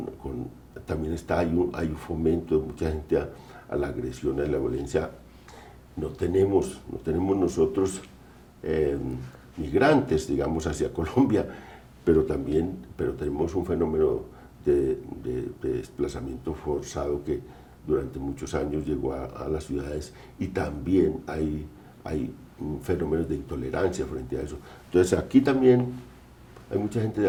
también hay un fomento de mucha gente a la agresión, a la violencia. No tenemos nosotros migrantes, digamos, hacia Colombia, pero tenemos un fenómeno de desplazamiento forzado que durante muchos años llegó a las ciudades, y también hay fenómenos de intolerancia frente a eso. Entonces aquí también hay mucha gente de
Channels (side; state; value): both; identical; correlation 1.00